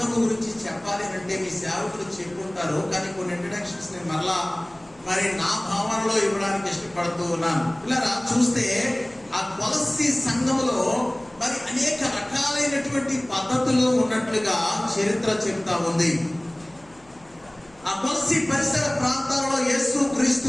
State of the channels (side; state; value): left; noise; hum, 29 dB below the sound